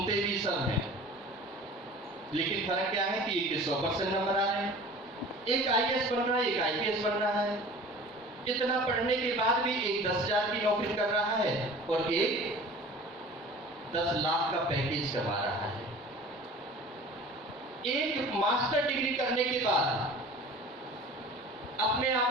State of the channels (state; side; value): normal; both; correlation 0.42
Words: भी सब हैं, लेकिन फर्क क्या है कि एक 100% नंबर आ रहे हैं, एक IAS बन रहा है, एक IPS बन रहा है। इतना पढ़ने के बाद भी एक 10,000 की नौकरी कर रहा है और एक 10 लाख का पैकेज कमा रहा है। एक मास्टर डिग्री करने के बाद अपने